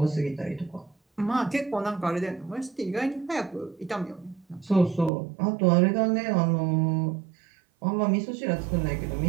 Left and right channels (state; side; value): drops out; left; at 5.1 s